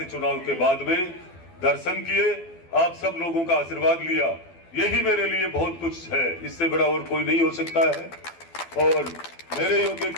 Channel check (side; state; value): right; late; 12 ms